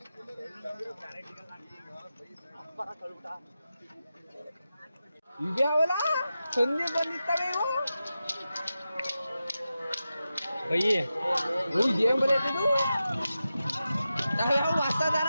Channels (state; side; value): inverted; both; correlation -0.92